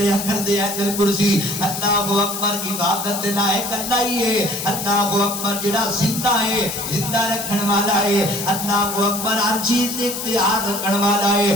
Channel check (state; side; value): noise; left; hiss, 6 dB below the sound